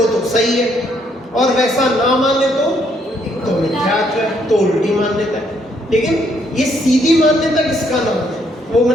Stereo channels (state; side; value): normal; both; correlation 0.70